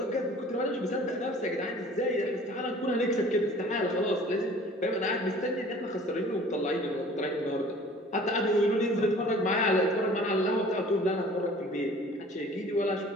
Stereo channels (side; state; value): both; normal; correlation 0.48